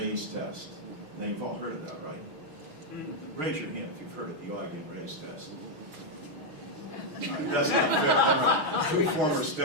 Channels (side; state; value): left; late; 6.3 ms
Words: test. Now you've all heard of that, right? Raise your hand if you've heard of the Augie and Ray's test. All right, that's not fair. Two former